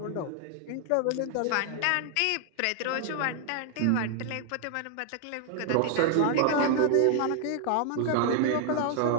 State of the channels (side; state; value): both; different; correlation 0.00